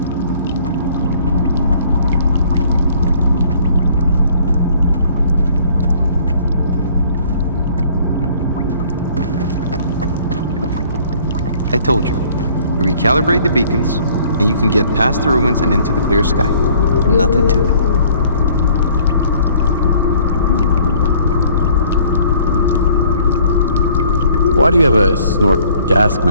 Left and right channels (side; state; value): both; inverted; correlation -0.57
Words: I told you, recalibrate the beacons, and you can get past the ruins and into the Clear Sky. Nothing to it. Why do you have a snort gas